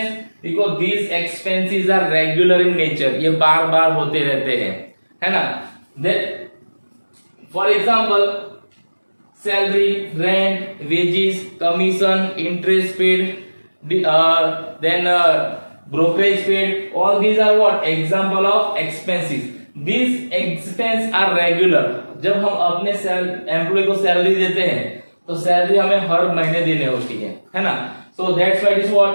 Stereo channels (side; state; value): both; inverted; correlation -1.00